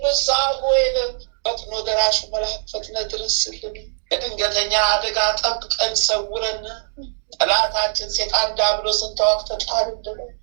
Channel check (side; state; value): left; silent; digital silence